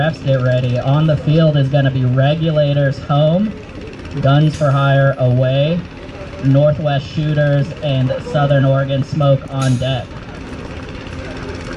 get ready, on the field is going to be Regulators home, Guns for Hire away, Northwest Shooters and Southern Oregon Smoke on deck.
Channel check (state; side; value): identical; both; correlation 1.00